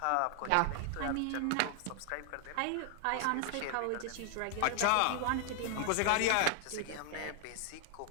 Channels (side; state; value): both; different; correlation 0.00